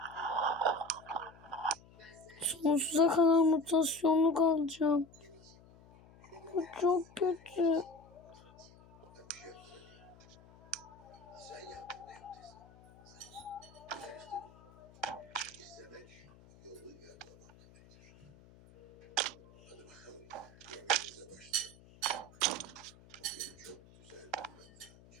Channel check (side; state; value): left; noise; hum, 23 dB below the sound